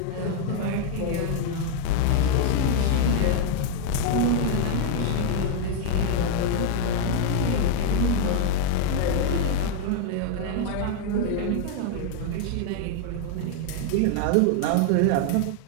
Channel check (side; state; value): both; different; correlation 0.00